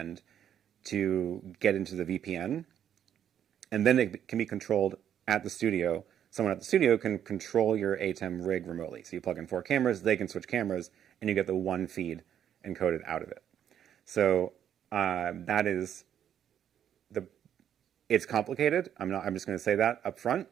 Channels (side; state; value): left; quieter; 9.7 dB